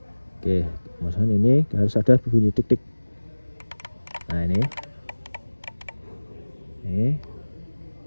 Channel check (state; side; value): inverted; both; correlation -1.00